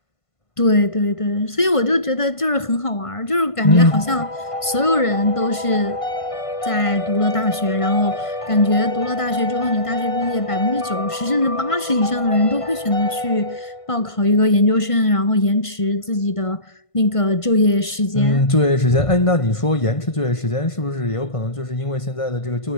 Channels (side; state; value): right; late; 1.5 ms